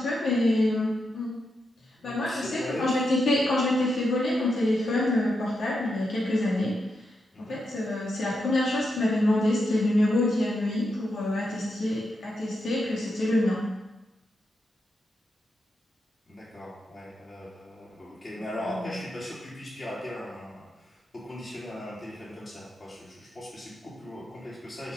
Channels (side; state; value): both; normal; correlation 0.85